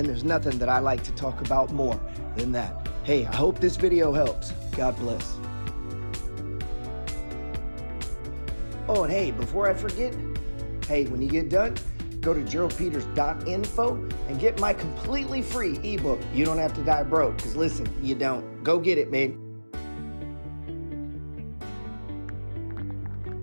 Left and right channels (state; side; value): inverted; both; correlation -1.00